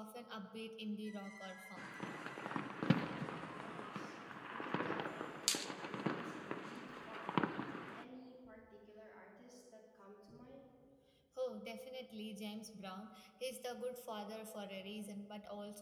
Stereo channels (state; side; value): identical; both; correlation 1.00